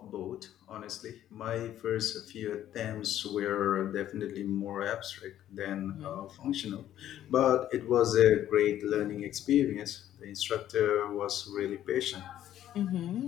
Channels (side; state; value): right; quieter; 11.9 dB